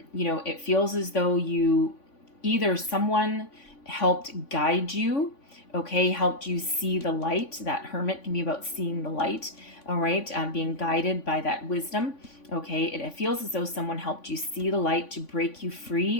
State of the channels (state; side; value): late; right; 3.5 ms